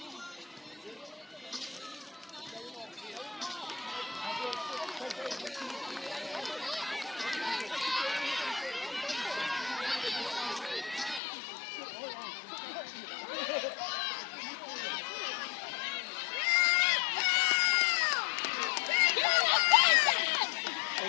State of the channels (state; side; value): drops out; right; at 11.2 s